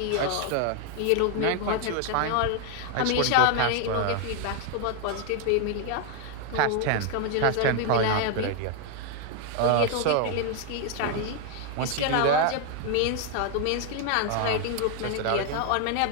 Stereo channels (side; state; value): both; different; correlation 0.00